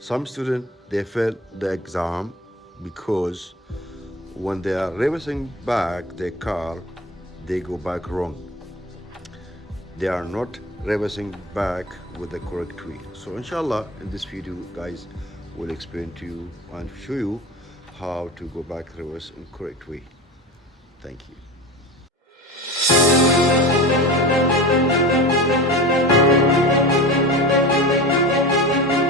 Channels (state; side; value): normal; both; correlation 0.31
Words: students they fail the exam because when they are reversing back their car, they go back wrong. They are not reversing back with the correct way. So inshallah in this video guys will explain to you and show you how to go back reverse in correct way. Thank you.